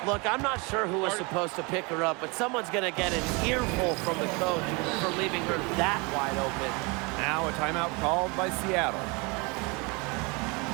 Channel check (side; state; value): left; quieter; 28.8 dB